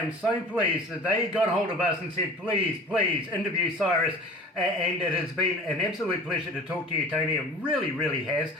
so pleased that they got hold of us and said, please interview Syrus. And it has been an absolute pleasure to talk to you, Tony. It really, really has.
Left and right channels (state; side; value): normal; both; correlation 0.41